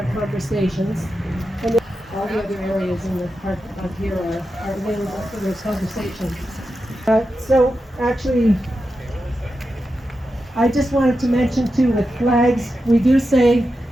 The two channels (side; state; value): both; normal; correlation 0.89